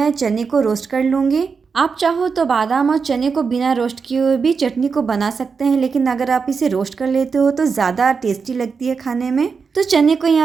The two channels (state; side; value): quieter; left; 5.4 dB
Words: चने को रोस्ट कर लूँगी। आप चाहो तो बादाम और चने को बिना रोस्ट किए हुए भी चटनी को बना सकते हैं, लेकिन अगर आप इसे रोस्ट कर लेते हो तो ज़्यादा टेस्टी लगती है खाने में। तो चने को